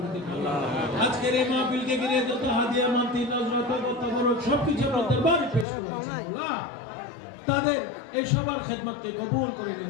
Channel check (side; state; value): right; drops out; at 5.7 s